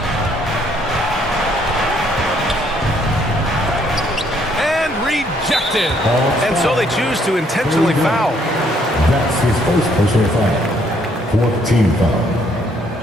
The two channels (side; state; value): both; normal; correlation 0.67